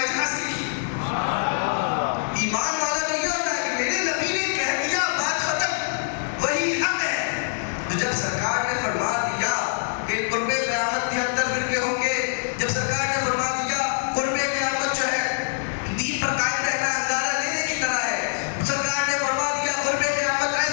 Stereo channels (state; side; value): silent; right; digital silence